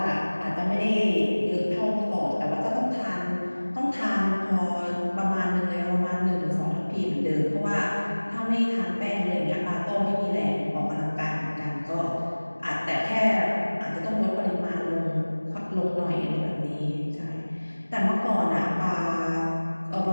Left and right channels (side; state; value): both; inverted; correlation -1.00